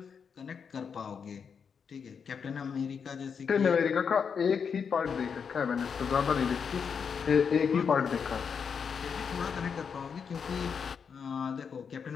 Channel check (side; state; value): right; quieter; 6.5 dB